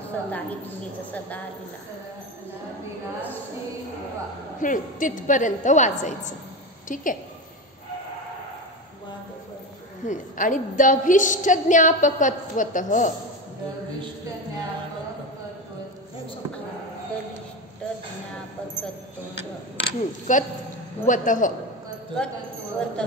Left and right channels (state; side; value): normal; both; correlation 0.21